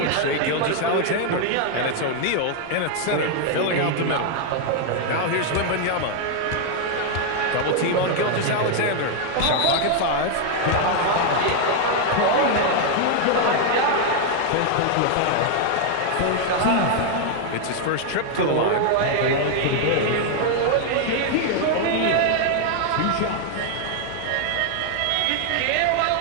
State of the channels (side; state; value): both; different; correlation 0.00